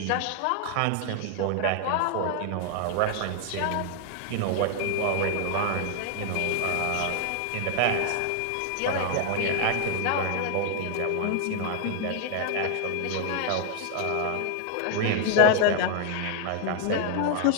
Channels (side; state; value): both; different; correlation 0.00